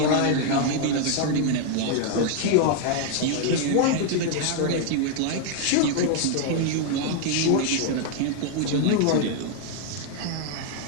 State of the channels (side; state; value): both; different; correlation 0.00